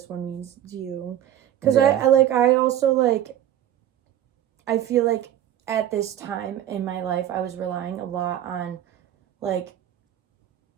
one means to you. Because I also, like, I feel like at this time in my life, I was relying a lot on, like,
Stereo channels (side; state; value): left; quieter; 11.3 dB